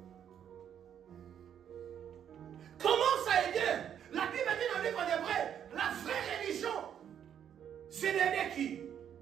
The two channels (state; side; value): quieter; left; 9.1 dB